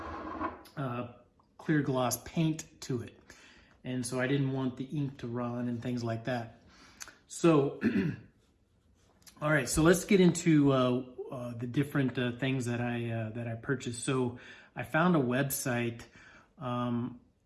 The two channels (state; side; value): identical; both; correlation 1.00